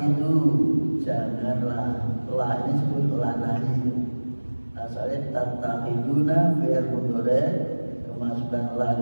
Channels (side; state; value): both; inverted; correlation -1.00